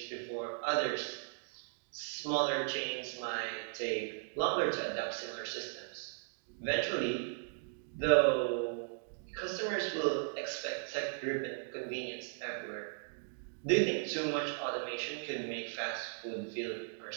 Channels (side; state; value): left; silent; digital silence